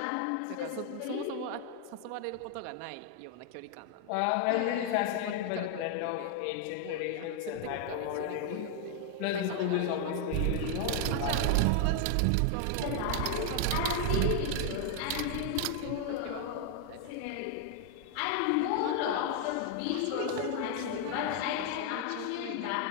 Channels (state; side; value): different; both; correlation 0.00